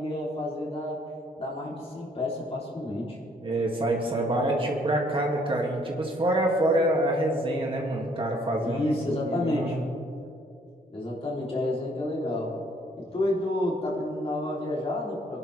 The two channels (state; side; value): normal; both; correlation 0.64